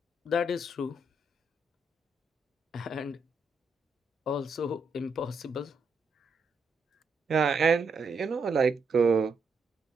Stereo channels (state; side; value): quieter; left; 3.2 dB